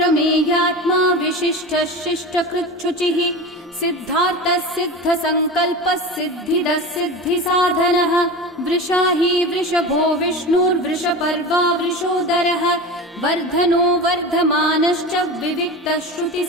विशिष्टः शिष्टकृच्छुचिः सिद्धार्थः सिद्धसङ्कल्पः सिद्धिदः सिद्धिसाधनः वृषाही वृषभो विष्णुर्वृषपर्वा वृषोदरः वर्धनो वर्धमानश्च विविक्तः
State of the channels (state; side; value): normal; both; correlation 0.28